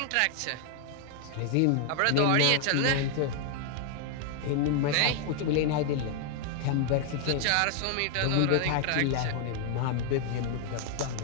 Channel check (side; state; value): both; different; correlation 0.00